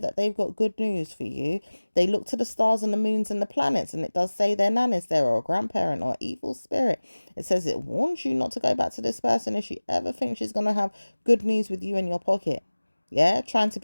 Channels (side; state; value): both; inverted; correlation -1.00